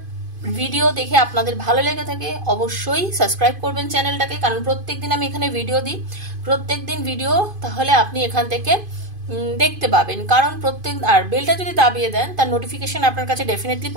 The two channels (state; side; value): late; left; 2.5 ms